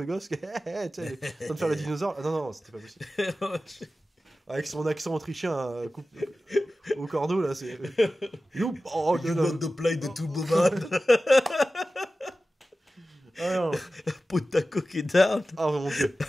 gosse, tu sais, en train de faire le dinosaure. Ah, non, c'était pas possible. Avec son accent autrichien au cordeau, là, c'est... You want to play the Turboman. Potako qui down. Ah, mon dieu.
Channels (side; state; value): both; normal; correlation 0.95